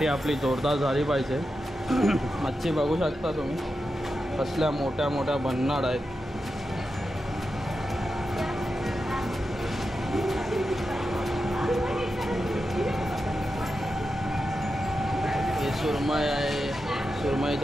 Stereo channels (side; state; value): both; normal; correlation 0.89